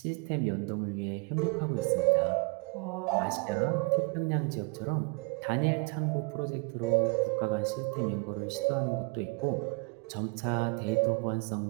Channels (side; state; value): left; quieter; 30.2 dB